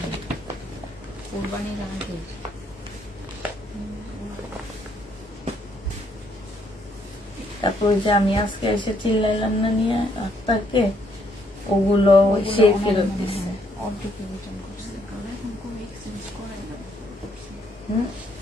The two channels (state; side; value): normal; both; correlation 0.70